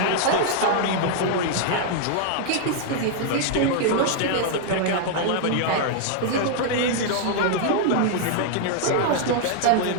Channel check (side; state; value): both; different; correlation -0.01